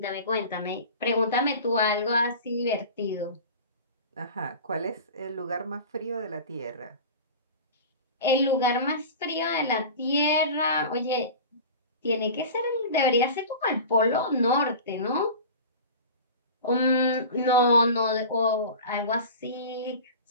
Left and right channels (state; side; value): inverted; both; correlation -0.35